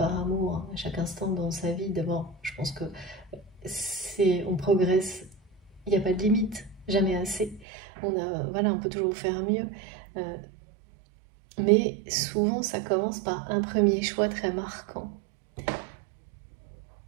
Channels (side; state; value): left; drops out; at 7.7 s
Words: amour à chaque instant dans sa vie, d'abord, je pense que on progresse, il n'y a pas de limite, jamais assez. Voilà, on peut toujours faire mieux. Mais souvent, ça commence par un premier choix très marquant.